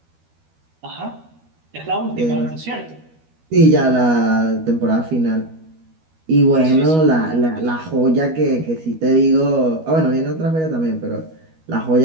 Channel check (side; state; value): left; late; 12 ms